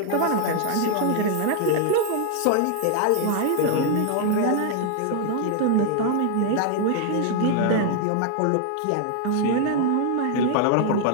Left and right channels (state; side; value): different; both; correlation 0.00